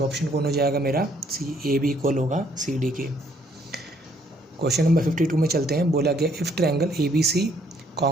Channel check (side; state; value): both; normal; correlation 0.66